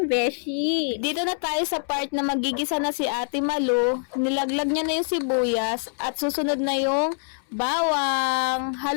Vichy. Dito na tayo sa part na magigisa na si Ate Malu. Nilaglag niya na yung sibuyas at susunod na yung bawang.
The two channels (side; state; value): right; silent; 62 dB below the other